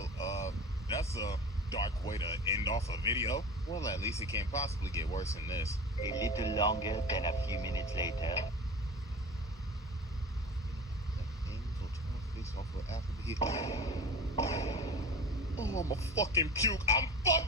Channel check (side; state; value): both; normal; correlation 0.34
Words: that's a dark way to end off a video. Well, at least it can't possibly get worse than this. A little longer than a few minutes later. Oh, I'm a fucking puke. I'm